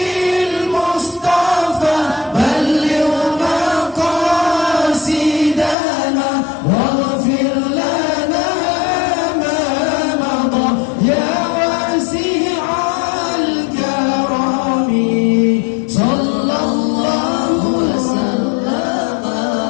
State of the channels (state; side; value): drops out; right; at 5.8 s